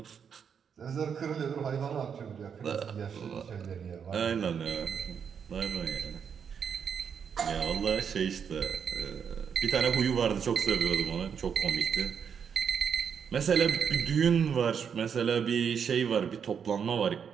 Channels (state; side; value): quieter; left; 7.2 dB